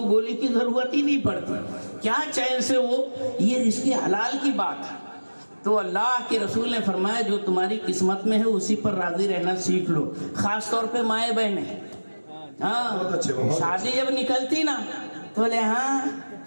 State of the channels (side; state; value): both; inverted; correlation -1.00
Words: گولی کی ضرورت ہی نہیں پڑتی. کیا چین سے وہ، یہ رزق حلال کی بات ہے. تو اللہ کے رسول نے فرمایا جو تمہاری قسمت میں ہے اسی پر راضی رہنا سیکھ لو. خاص طور پہ مائیں بہنیں. ہاں شادی جب نکلتی نا تو بولے ہاں